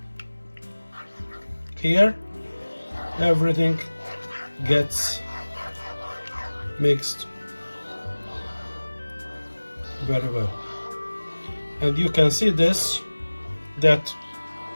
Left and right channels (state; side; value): inverted; both; correlation -1.00